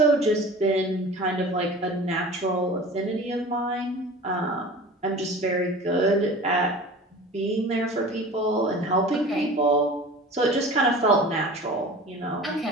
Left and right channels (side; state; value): both; normal; correlation 0.39